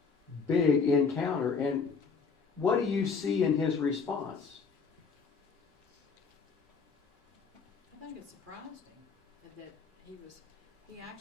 big encounter. And what do you see in his response? I think it surprised him that he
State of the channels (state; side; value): quieter; right; 5.3 dB